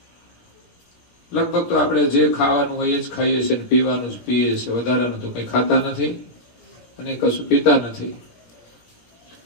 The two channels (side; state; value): right; late; 17 ms